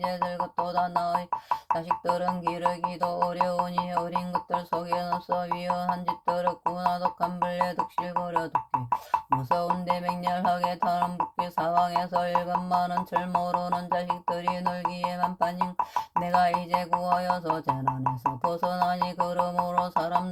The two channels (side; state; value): both; identical; correlation 1.00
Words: 늙었도다. 나의 자식들은 기르기도 어려우니 어린 것들 속엔 없어 위험한 짓들 없구나. 독한 벌레 득실거려 독기 무서운데 맹렬하게 타는 붓기 사방에서 일감 많은 철 모르는 자식들이 놀기에만 빠진 내가 이제 구하여서 재난에서 벗어나니 그러므로